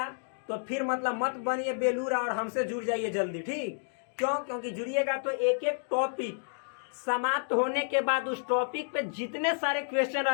तो फिर मतलब मत बनिए बेलूरा और हमसे जुड़ जाइए जल्दी। ठीक? क्यों? क्योंकि जुड़िएगा तो एक एक टॉपिक समाप्त होने के बाद उस टॉपिक पे जितने सारे क्वेश्चन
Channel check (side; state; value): right; silent; digital silence